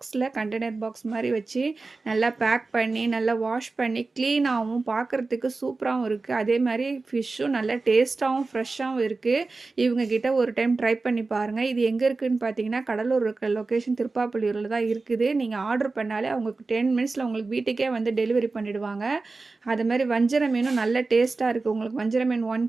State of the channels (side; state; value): left; quieter; 3.7 dB